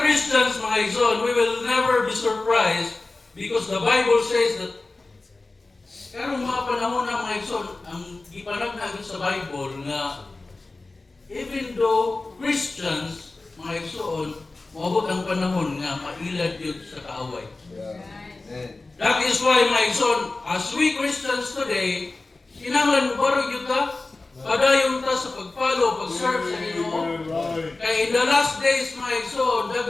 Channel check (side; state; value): right; quieter; 3.3 dB